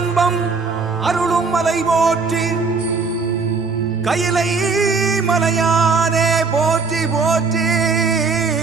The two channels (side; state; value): left; quieter; 4.6 dB